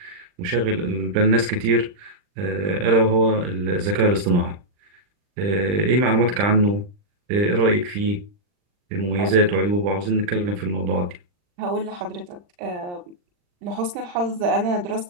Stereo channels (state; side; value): late; left; 39 ms